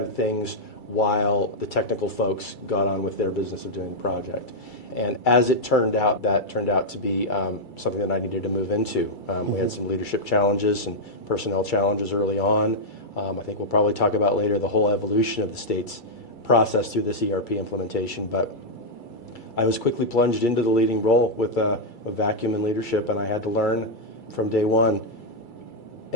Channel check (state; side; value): late; right; 2.3 ms